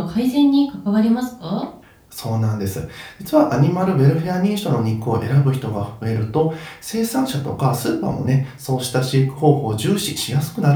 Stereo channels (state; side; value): identical; both; correlation 1.00